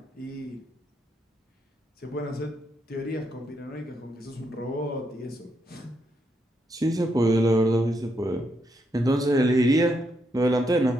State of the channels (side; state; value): both; normal; correlation 0.79